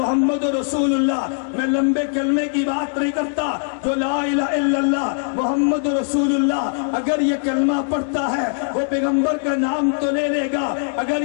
رسول اللہ، میں لمبے کلمے کی بات نہیں کرتا، جو لا الہ الا اللہ محمد رسول اللہ اگر یہ کلمہ پڑھتا ہے وہ پیغمبر کا نام تو لے لے گا، اگر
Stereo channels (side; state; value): right; silent; digital silence